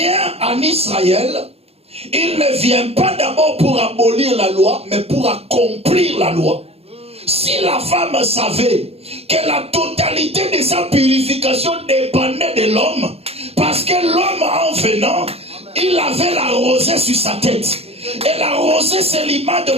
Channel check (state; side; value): late; left; 0.29 ms